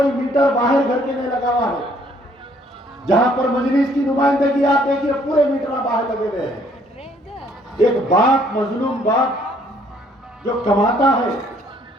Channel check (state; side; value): normal; both; correlation 0.63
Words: मीटर बाहर घर के नहीं लगा हुआ है। जहां पर मजलिस की नुमाइंदगी आप देखिए, पूरे मीटर बाहर लगे हुए हैं। एक बाप, मजलूम बाप जो कमाता है,